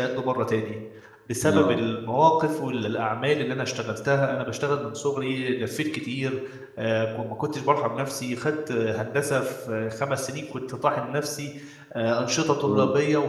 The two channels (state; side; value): identical; both; correlation 1.00